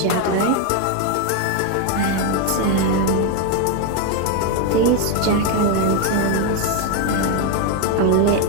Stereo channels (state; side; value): different; both; correlation 0.01